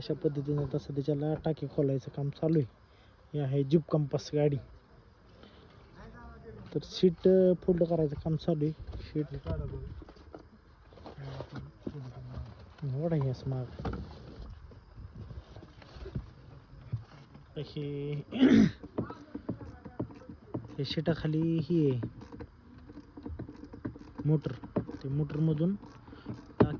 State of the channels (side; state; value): both; identical; correlation 1.00